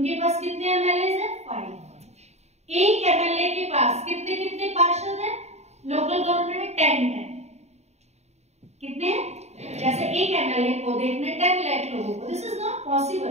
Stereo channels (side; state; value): left; late; 0.32 ms